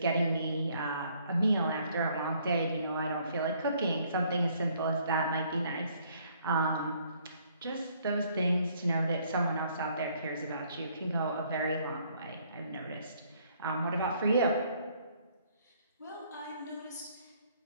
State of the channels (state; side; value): inverted; both; correlation -0.64